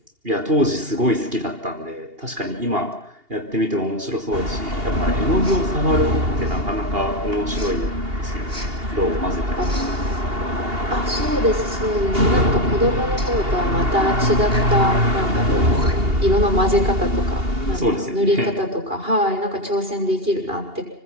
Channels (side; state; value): left; late; 2.8 ms